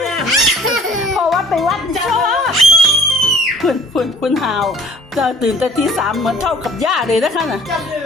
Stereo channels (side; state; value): both; normal; correlation 0.54